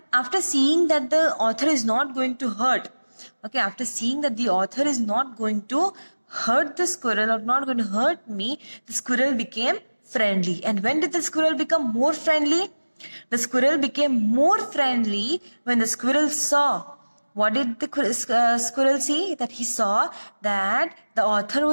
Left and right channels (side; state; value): both; inverted; correlation -1.00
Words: after seeing that the author is not going to hurt? Okay, after seeing that the author is not going to hurt the squirrel or not going to hurt me, the squirrel became friendly. And when did the squirrel become more friendly? The squirrel became more friendly when the squirrel saw. What did the squirrel see? That he saw that the author